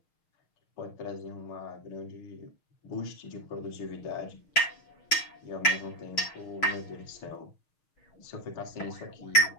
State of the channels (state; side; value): late; right; 6.5 ms